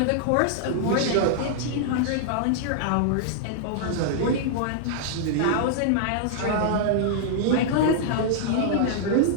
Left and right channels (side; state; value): both; different; correlation -0.01